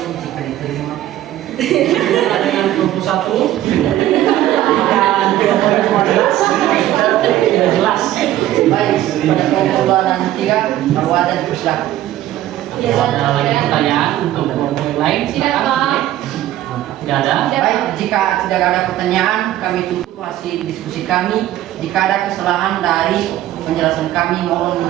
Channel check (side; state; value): left; quieter; 13.6 dB